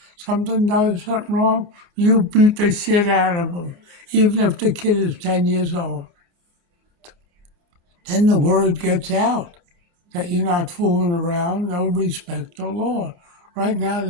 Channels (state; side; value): late; left; 28 ms